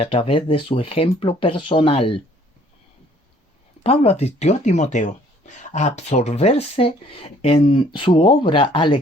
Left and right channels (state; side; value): normal; both; correlation 0.59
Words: través de su ejemplo personal. Pablo advirtió a Timoteo a absorberse en su obra al